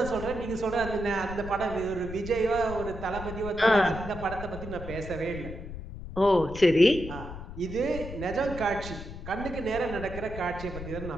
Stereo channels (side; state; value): left; noise; rumble, 10 dB below the sound